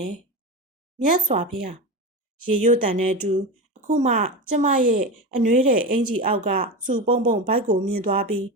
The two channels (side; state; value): both; normal; correlation 0.22